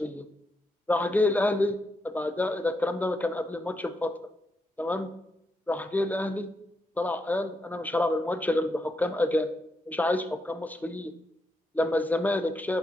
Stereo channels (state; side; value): normal; both; correlation 0.82